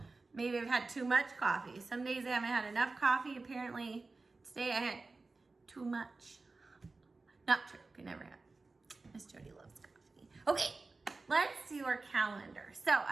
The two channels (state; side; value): quieter; left; 3.6 dB